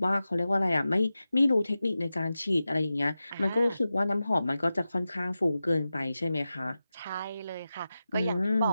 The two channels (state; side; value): inverted; both; correlation -0.93